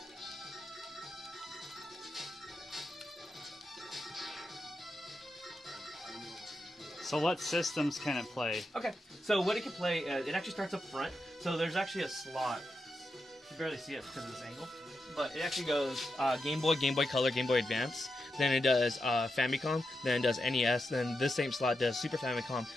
So what systems can it play? okay, so what it can play, it actually starts up front. So there's actually a slot. You can barely see it because of this angle. But it actually goes Game Boy, Game Boy Color, Game Boy Advance. Then it does Famicom. Then it does NES. Then this same slot does Super Famicom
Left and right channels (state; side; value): normal; both; correlation 0.87